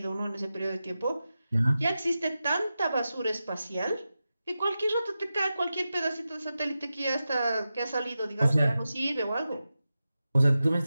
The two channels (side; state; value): both; inverted; correlation -0.92